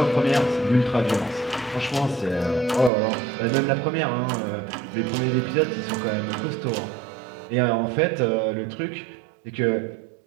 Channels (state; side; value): drops out; left; at 2.9 s